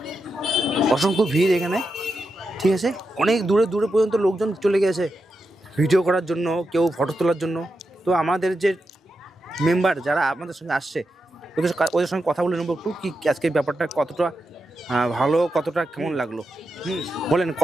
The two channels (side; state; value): both; normal; correlation 0.87